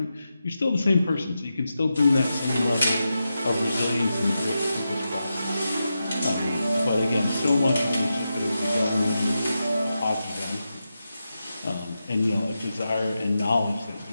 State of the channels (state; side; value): inverted; both; correlation -0.89